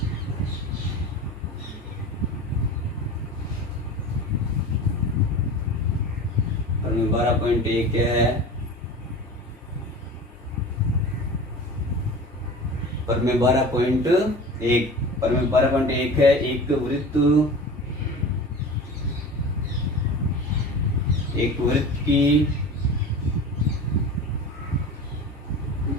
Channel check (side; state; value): both; normal; correlation 0.35